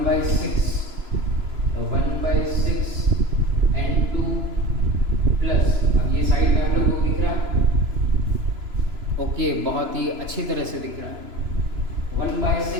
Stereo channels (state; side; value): late; left; 3.0 ms